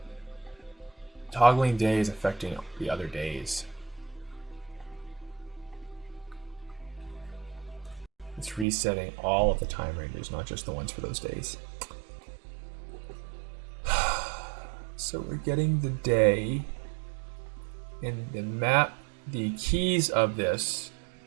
Toggling day is affecting the other days. It's resetting all of the time ranges, not just the ones for those days. So we're getting the day and the map. The keys of this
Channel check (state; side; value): drops out; left; at 8.7 s